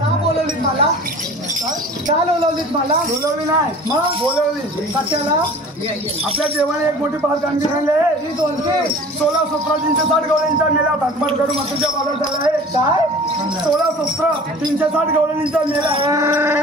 बोलवलीत मला? का बोलवलीत मला? बोलवली नाही मग बोलवली कशाला? आपल्या देवाने एक मोठी पाच कामगिरी सांगले. ही दोनशे 16 17 360 गवळ्यांच्या मेला भागभाग करून मातीच्या बाजार झाला आहे. काय? 16 17 360 गवळ्यांचा मेला.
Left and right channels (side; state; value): both; normal; correlation 0.43